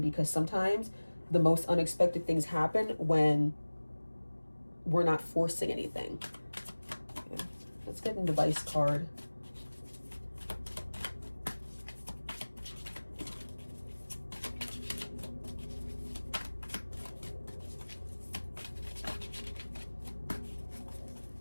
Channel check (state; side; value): inverted; both; correlation -1.00